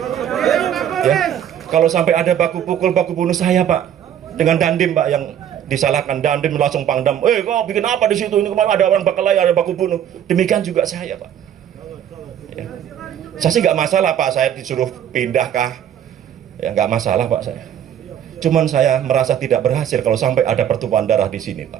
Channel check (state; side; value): quieter; left; 9.9 dB